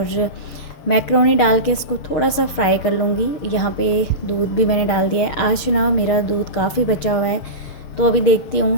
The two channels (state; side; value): late; right; 6.5 ms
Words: मैक्रोनी डाल के इसको थोड़ा सा फ्राई कर लूँगी। यहाँ पे दूध भी मैंने डाल दिया है। आज ना मेरा दूध काफ़ी बचा हुआ है, तो अभी देखती